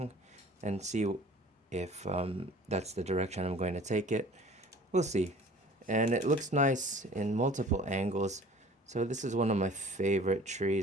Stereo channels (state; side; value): normal; both; correlation 0.48